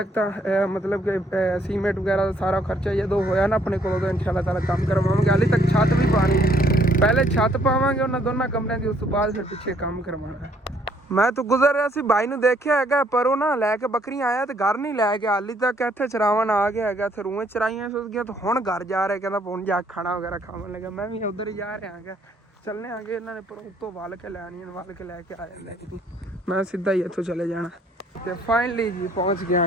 ਤਾਂ ਮਤਲਬ ਕਿ ਸੀਮੈਂਟ ਵਗੈਰਾ ਦਾ ਸਾਰਾ ਖਰਚਾ ਜਦੋਂ ਹੋਇਆ ਨਾ ਆਪਣੇ ਕੋਲੋਂ ਤਾਂ ਇਨਸ਼ਾਅੱਲਾ ਤਾਲਾ ਕੰਮ ਕਰਵਾਵਾਂਗੇ। ਹਾਲੇ ਤੱਕ ਛੱਤ ਵੀ ਪਾਣੀ, ਪਹਿਲੇ ਛੱਤ ਪਾਵਾਂਗੇ ਉਹਨਾਂ ਦੋਨਾਂ ਕਮਰਿਆਂ ਦੀ, ਉਸ ਤੋਂ ਬਾਅਦ ਫਿਰ ਪਿੱਛੇ ਕੰਮ ਕਰਵਾਉਣਾ। ਮੈਂ ਤਾਂ ਗੁਜ਼ਰ ਰਿਹਾ ਸੀ, ਭਾਈ ਨੂੰ ਦੇਖਿਆ ਹੈਗਾ ਪਰ ਉਹ ਨਾ ਲੈ ਕੇ ਬੱਕਰੀਆਂ ਆਇਆ ਤੇ ਘਰ ਨਹੀਂ ਲੈ ਕੇ, ਹਾਲੀ ਤੱਕ ਇੱਥੇ ਚਰਾਵਣ ਆ ਗਿਆ ਹੈਗਾ, ਇੱਥੇ ਰੂਹੇ ਚਰਾਈਆਂ ਸੁੱਕ ਗਿਆ, ਤੇ ਹੁਣ ਘਰ ਜਾ ਰਿਹਾ, ਕਹਿੰਦਾ ਹੁਣ ਜਾ ਖਾਣਾ ਵਗੈਰਾ ਖਾਵਣ ਲੱਗਾ। ਮੈਂ ਵੀ ਉੱਧਰ ਹੀ ਜਾ ਰਿਹਾ ਹੈਗਾ, ਚੱਲਣੇ ਆਗੇ ਇਹਨਾਂ ਨੇ ਪਰ ਉੱਤੋਂ ਵੱਲ ਕੇ ਲੈਣੀਆਂ, ਵੱਲ ਕੇ ਲੈ ਕੇ ਆ ਜਾਂਦੇ, ਮੈਂ ਸਿੱਧਾ ਹੀ ਇੱਥੋਂ ਚਲੇ ਜਾਣਾ। ਤੇ ਫਾਈਨਲੀ ਜੀ ਪਹੁੰਚ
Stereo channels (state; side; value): normal; both; correlation 0.66